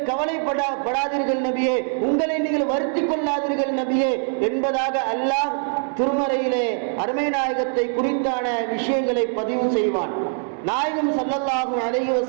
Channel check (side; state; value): left; silent; 57 dB below the other